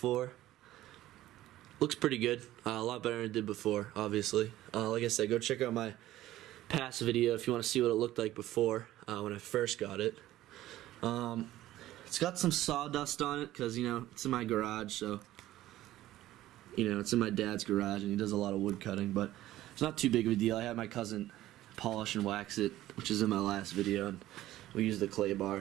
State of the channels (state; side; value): quieter; left; 14.8 dB